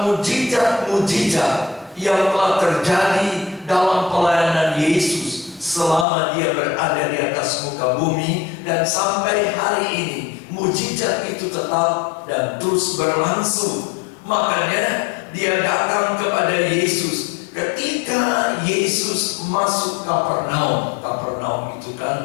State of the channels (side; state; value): right; drops out; at 6.1 s